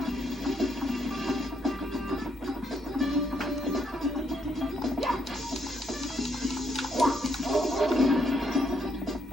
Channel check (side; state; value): both; normal; correlation 0.74